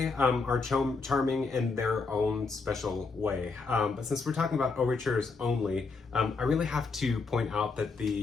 are charming in their own special way. But since we're talking about overtures only, I really have to point out that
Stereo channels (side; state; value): right; quieter; 4.3 dB